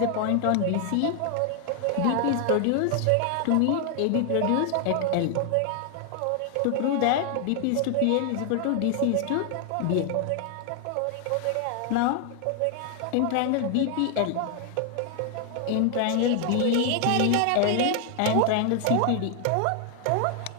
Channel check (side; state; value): both; different; correlation 0.00